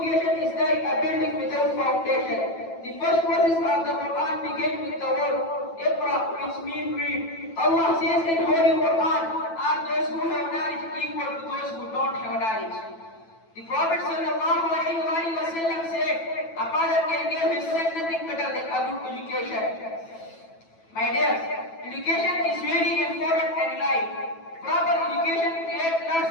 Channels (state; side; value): late; right; 9.1 ms